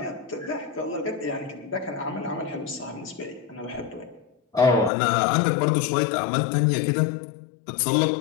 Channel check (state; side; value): drops out; right; at 4.9 s